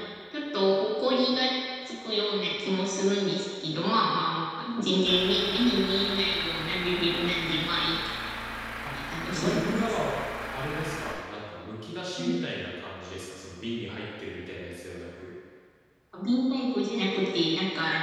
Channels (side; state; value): both; identical; correlation 1.00